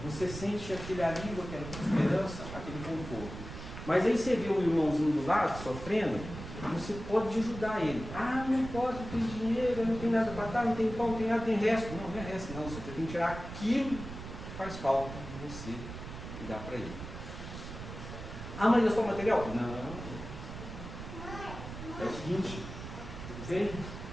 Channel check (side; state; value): right; noise; rumble, 10 dB below the sound